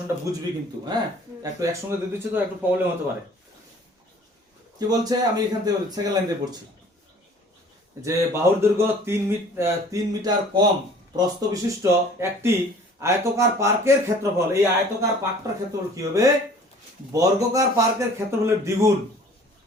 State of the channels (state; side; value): normal; both; correlation 0.51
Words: বুঝবি কিন্তু। হ্যাঁ, একটু একসঙ্গে দিয়ে দিচ্ছি তো একটু প্রবলেম হতে পারে। কি বলছে, আমি এখান থেকে সেকেন্ড লাইন দিয়ে পড়ছি যে বাহুর দৈর্ঘ্য 3 মিটার কম প্রস্থ বিশিষ্ট একটি আয়তকার পার্কের ক্ষেত্রফল, এই আয়তকার পার্কটার ক্ষেত্রফল কি হবে বর্গাকার পার্কের ক্ষেত্রফলের দ্বিগুণ।